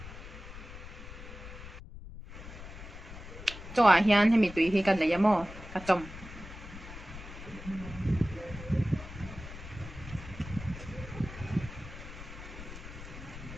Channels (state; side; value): noise; left; rumble, 12 dB below the sound